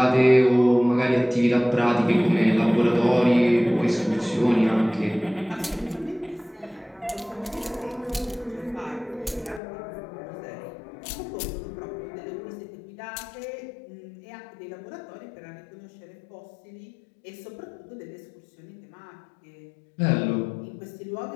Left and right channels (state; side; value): drops out; right; at 9.6 s